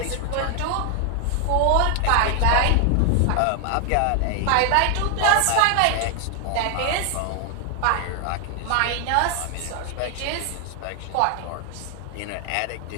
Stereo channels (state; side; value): different; both; correlation 0.00